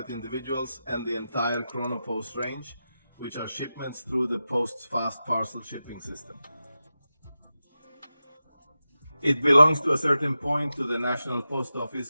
individuals, and the entire Chronopost range, which are shipments through the Post's fast parcel shipping system. It belongs to a certain point to the National Post Office,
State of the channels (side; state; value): both; inverted; correlation -0.92